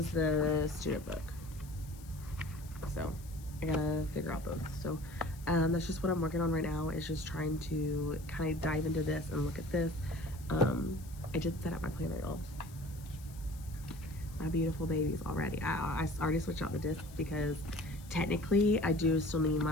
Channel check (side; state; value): left; noise; hiss, 21 dB below the sound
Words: the student book. So I gotta figure out both. So that's just what I'm working on right now, is just trying to kind of dive into this and look at this. I just set up my planner, y'all. My beautiful babies already. I already switched out the discs because technically I do still need